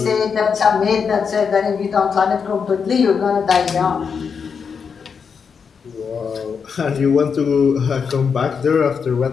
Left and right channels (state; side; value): quieter; right; 6.1 dB